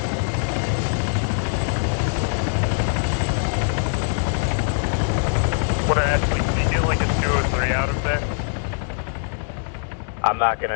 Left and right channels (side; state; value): right; silent; 63 dB below the other